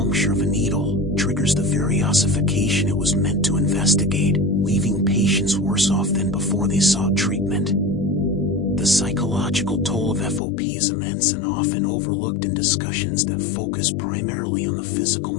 of a needle, triggers the very ossification it was meant to investigate, leaving patients worse off than before they sought treatment. The psychological toll of FOP is immense and often overlooked in discussions that focus primarily on the physical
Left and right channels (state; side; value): drops out; right; at 10.4 s